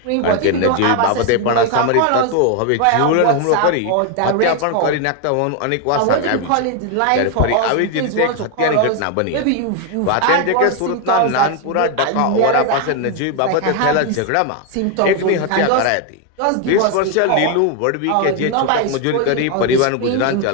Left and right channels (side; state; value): both; different; correlation 0.01